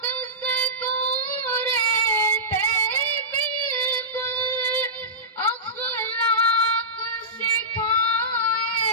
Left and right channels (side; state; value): both; normal; correlation -0.17